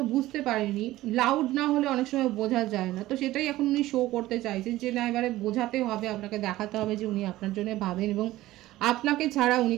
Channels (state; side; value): quieter; left; 16.3 dB